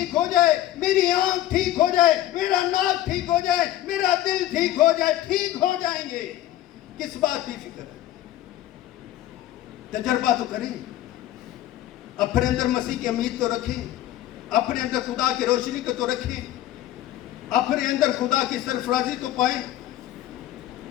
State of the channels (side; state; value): right; quieter; 13.8 dB